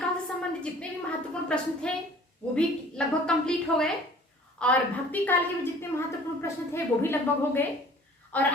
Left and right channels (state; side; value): normal; both; correlation 0.50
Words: से संबंधित जितने भी महत्वपूर्ण प्रश्न थे वो भी लगभग कंप्लीट हो गए और भक्ति काल के भी जितने महत्वपूर्ण प्रश्न थे वो भी लगभग हो गए। और